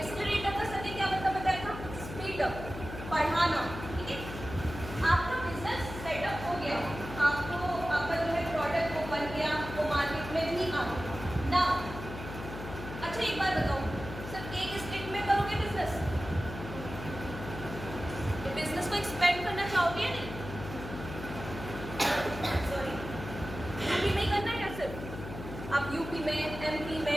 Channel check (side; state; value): left; noise; hum, 10 dB below the sound